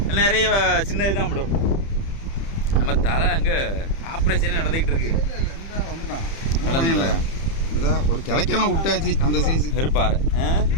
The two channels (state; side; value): late; right; 30 ms